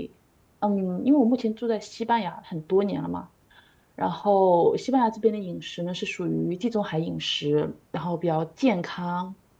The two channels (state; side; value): identical; both; correlation 1.00